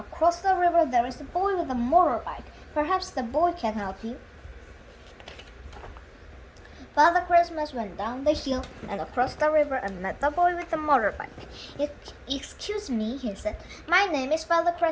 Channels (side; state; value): both; identical; correlation 1.00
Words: the river, there is a boy with a motorbike. Perhaps the boy can help you." Father Christmas went down the hill and across the river and met the boy with the motorbike. "Excuse me," he said. "My name is Father